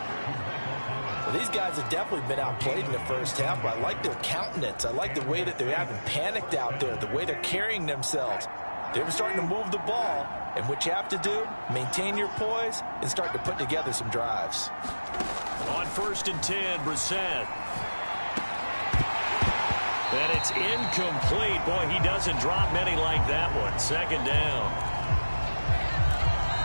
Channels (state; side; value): inverted; both; correlation -1.00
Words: Well, these guys have definitely been outplayed in the first half, but I like their countenance. I like the way that they haven't panicked out there, the way they're carrying themselves. They're starting to move the ball, and what you have to do, maintain your poise and start to put together some drives. On 1st and 10, Brissett. And it's incomplete. Boy, he doesn't drop many like that one. Second down.